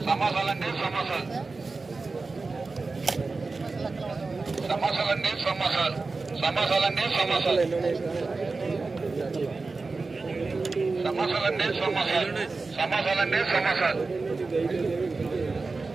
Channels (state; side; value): quieter; left; 3.9 dB